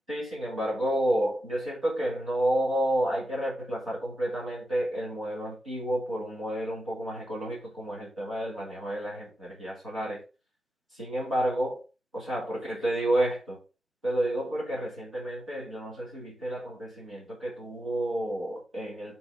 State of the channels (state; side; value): normal; both; correlation 0.88